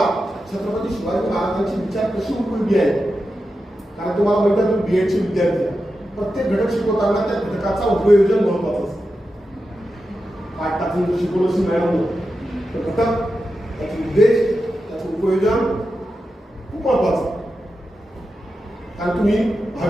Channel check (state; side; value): normal; both; correlation 0.90